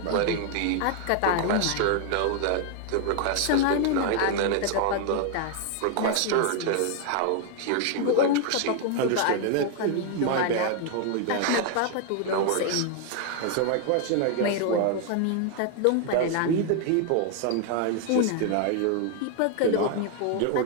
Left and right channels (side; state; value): both; different; correlation 0.00